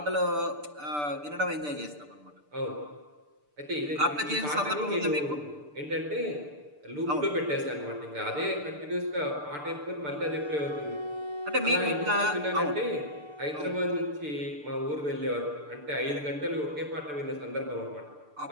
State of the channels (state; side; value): late; left; 6.8 ms